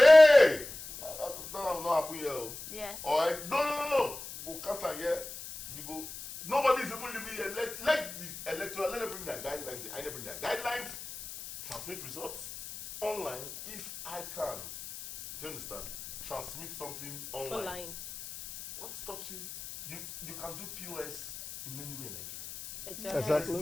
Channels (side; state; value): left; noise; hiss, 11 dB below the sound